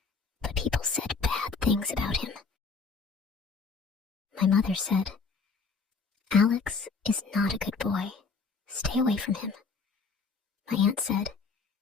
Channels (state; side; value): quieter; right; 4.8 dB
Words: but people said bad things about him. My mother said, "Alex is not a good boy. Stay away from him." My aunt said,